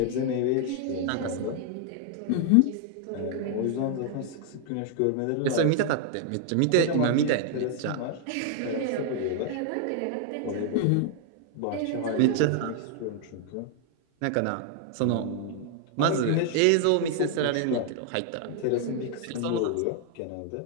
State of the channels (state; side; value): different; both; correlation 0.00